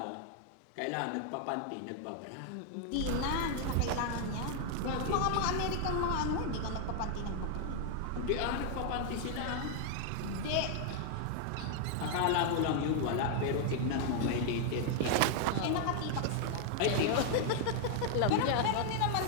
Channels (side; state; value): both; different; correlation 0.00